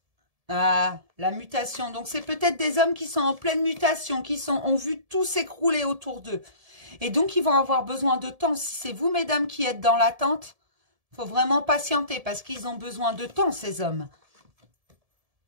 Ah, la mutation. Donc, c'est peut-être des hommes qui sont en pleine mutation, ont vu tout s'écrouler autour d'eux. Et donc, ils vont avoir besoin de temps. Si c'est vous, mesdames, qui êtes dans l'attente, il faut vraiment patienter parce qu'ils ont besoin de temps, ces hommes.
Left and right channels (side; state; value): left; late; 1.7 ms